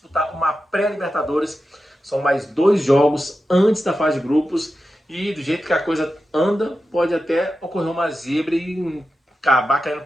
uma pré-Libertadores. São mais 2 jogos antes da fase de grupos, e do jeito que a coisa anda, pode até ocorrer uma zebra e acabar caindo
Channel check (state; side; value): normal; both; correlation 0.91